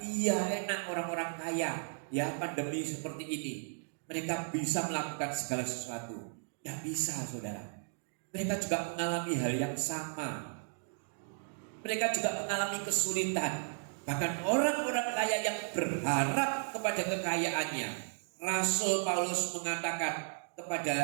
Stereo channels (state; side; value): silent; left; digital silence